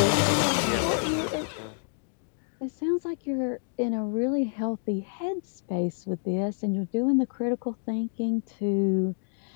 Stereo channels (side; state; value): right; silent; 59 dB below the other